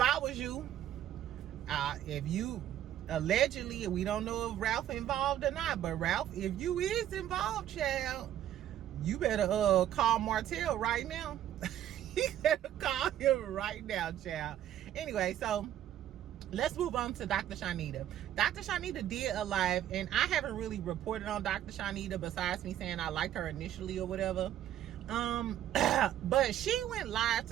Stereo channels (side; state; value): left; quieter; 11.6 dB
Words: I was you, if you allegedly, we don't know if Ralph involved or not, but Ralph, if you is involved, child, you better call Martell right now. You better call him right now, child. Anyway, so let's move on to Dr. Shanita. Dr. Shanita did a live, and I haven't really reported on Dr. Shanita besides me saying I liked her initially or whatever. But she went live